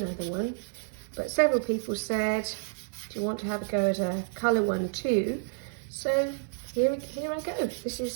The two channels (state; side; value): silent; left; 58 dB below the other